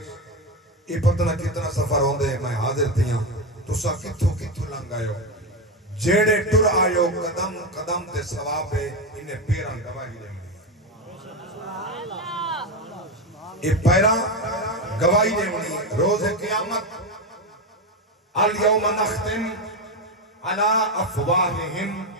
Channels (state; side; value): normal; both; correlation 0.13